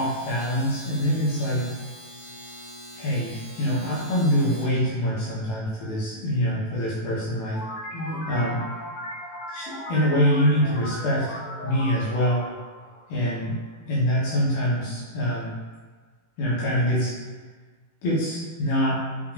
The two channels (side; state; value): right; late; 18 ms